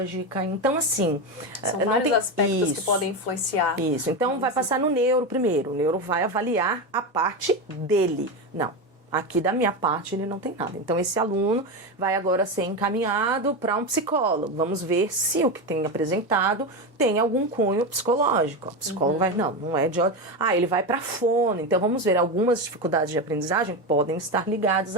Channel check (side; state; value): both; normal; correlation 0.16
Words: então assim... São não vários tem aspectos que podem influenciar. Isso, então vai passar no neuro primeiro, o neuro vai avaliar a parte dele, não. Aqui da minha parte ele não tem nada. Então esse aluno vai agora ser encaminhado para um psicólogo. Vamos ver se o que tem apresentado tem algum cunho psicológico. O psicólogo vai, não é de ordem. Ele vai para fono. Então vamos ver, algumas dificuldades de aprendizagem podem estar ligadas